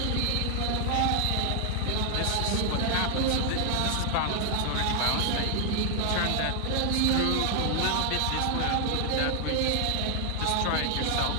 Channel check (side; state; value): both; different; correlation 0.00